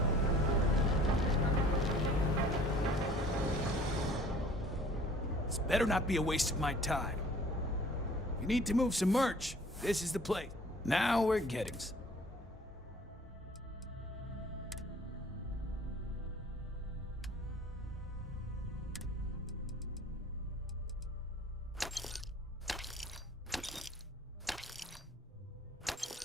This better not be a waste of my time. If you need to move some merch, this is the place. Now we're getting some.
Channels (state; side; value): normal; both; correlation 0.51